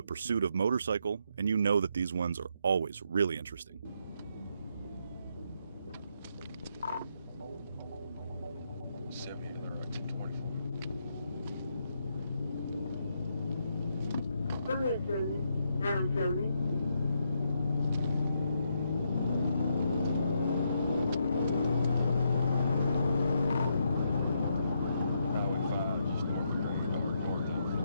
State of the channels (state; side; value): inverted; both; correlation -0.78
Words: pursuit of motorcycle, and you know that these ones are always really interesting. Go ahead, 70. Down 70.